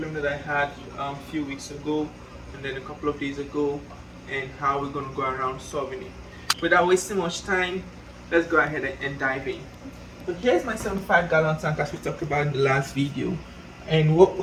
that I had a few weeks ago and then a couple of days ago, and how we're gonna go around solving it. Without wasting much time, let's go ahead and dive in. So here's my 75-gallon tank as we talked about in the last video. And what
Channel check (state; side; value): identical; both; correlation 1.00